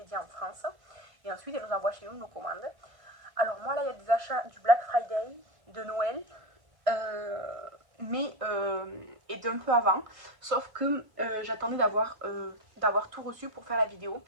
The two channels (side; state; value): left; late; 1.6 ms